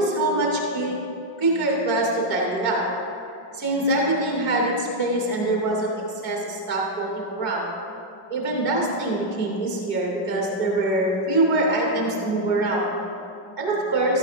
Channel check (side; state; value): right; late; 5.4 ms